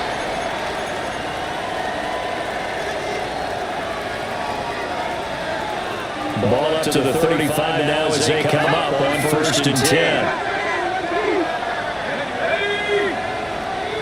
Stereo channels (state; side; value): identical; both; correlation 1.00